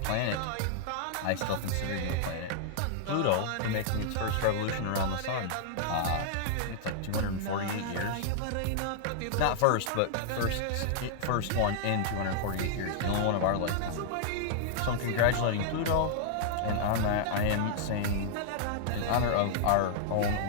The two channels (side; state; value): both; different; correlation -0.01